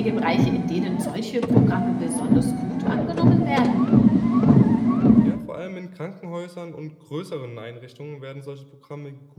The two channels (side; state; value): both; identical; correlation 1.00